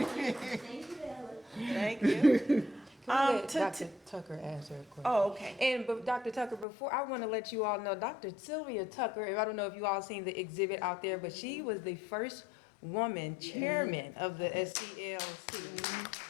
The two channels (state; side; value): drops out; right; at 6.7 s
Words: Thank you. Can we let to- Dr. Tucker answer a question? Oh, okay. And but Dr. Tucker, before I want to let you all know, Dr. Sylvia Tucker, I don't know if you all seen the exhibit out there, but she was the first woman chairman of the SCLC.